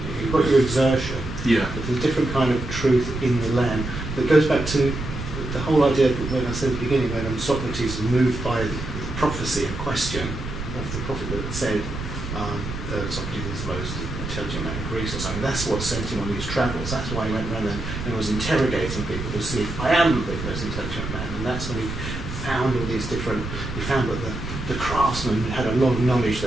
You've got your exertion, but there's a different kind of truth in the land that goes back to the whole idea when I said at the beginning, when Socrates was moved by the prophecy, a question of the prophet that said Socrates is the most intelligent man in Greece or something. That's what sent him on these travels. That's why he went around and was interrogating people to see if I am the most intelligent man. And that's when he found all these different. He found that the craftsman had a lot of knowledge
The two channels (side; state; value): right; noise; rumble, 7 dB below the sound